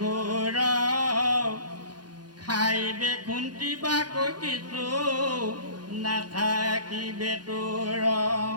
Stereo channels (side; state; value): left; late; 0.69 ms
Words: খাইবে খুন্তিবাকৈ কিছু নাথাকিবে তোৰ